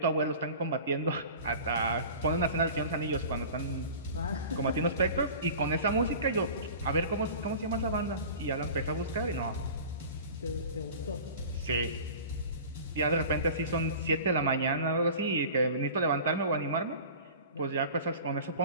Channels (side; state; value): both; inverted; correlation -0.39